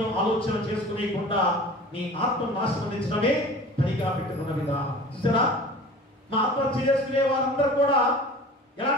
ఆలోచన చేసుకునేకుండా నీ ఆత్మను నాశనమించడమే పనిగా పెట్టుకున్న విధానం. చూసారా, మా ఆత్మహత్య చేసుకునే వారందరూ కూడా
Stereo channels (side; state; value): both; normal; correlation 0.41